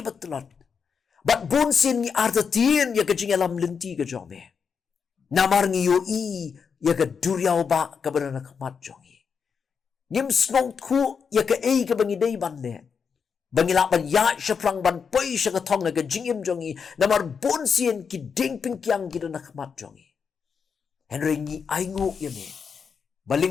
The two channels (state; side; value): quieter; right; 6.2 dB